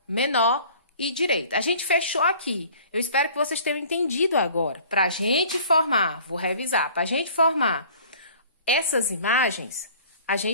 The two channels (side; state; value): both; inverted; correlation -0.49